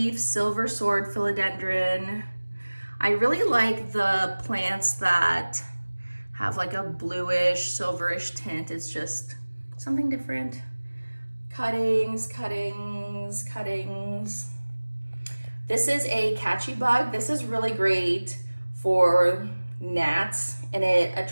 silver sword philodendron. I really like the plants that have like a bluish, silverish tint. It's just something different. Cuttings, cuttings, cuttings. This is a catchy bug. This is really great for gnats, and it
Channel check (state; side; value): inverted; both; correlation -1.00